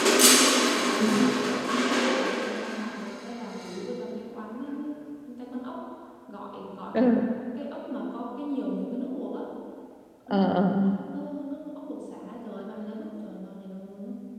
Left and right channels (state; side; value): identical; both; correlation 1.00